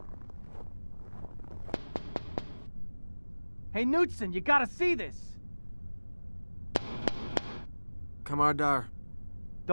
Hey, Knudsen, you gotta see this! Kamardar.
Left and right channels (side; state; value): both; inverted; correlation -1.00